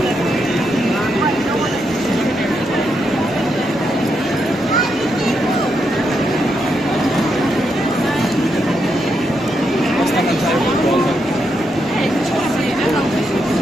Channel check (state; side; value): normal; both; correlation 0.81